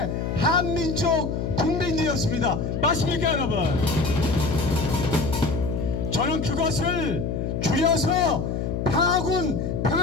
한민족 국민들이었습니다. 맞습니까 여러분? 저는 그것을 줄여서 평화군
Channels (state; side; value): noise; left; hum, 2 dB below the sound